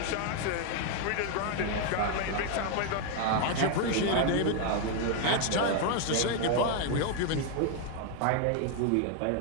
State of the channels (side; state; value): both; different; correlation 0.01